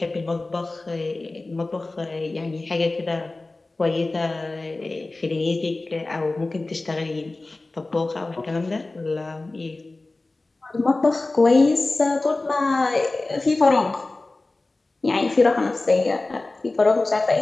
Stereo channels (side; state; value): right; quieter; 3.1 dB